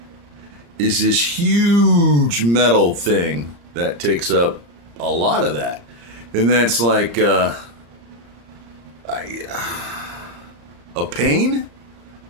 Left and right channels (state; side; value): late; left; 34 ms